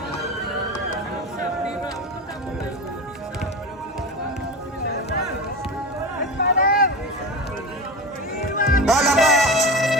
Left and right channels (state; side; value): normal; both; correlation 0.26